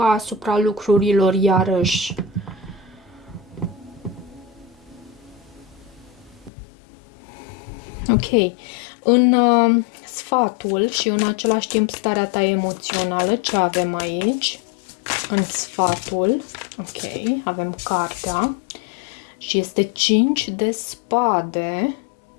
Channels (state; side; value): drops out; right; at 6.5 s